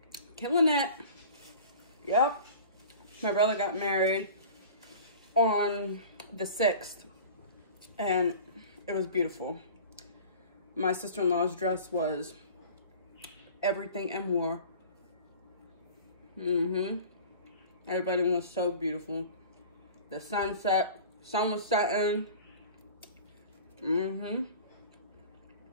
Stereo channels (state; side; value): inverted; both; correlation -0.42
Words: killing it. Yep. My brother got married on the 6th, and it was beautiful. My sister-in-law's dress was everything and more. Everybody was so beautiful. The sunset, sun was setting.